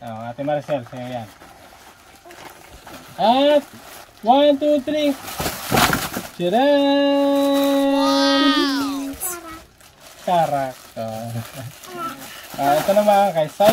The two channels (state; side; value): identical; both; correlation 1.00